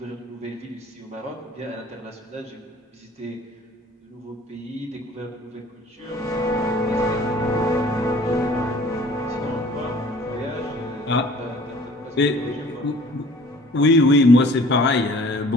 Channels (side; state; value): both; normal; correlation 0.51